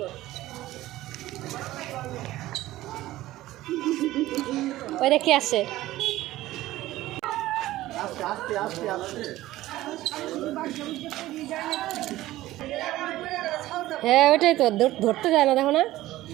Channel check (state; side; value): quieter; left; 16.1 dB